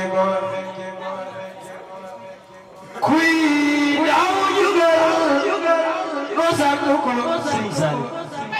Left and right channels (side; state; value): both; identical; correlation 1.00